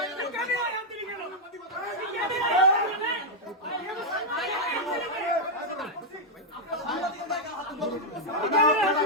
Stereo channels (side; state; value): both; normal; correlation -0.03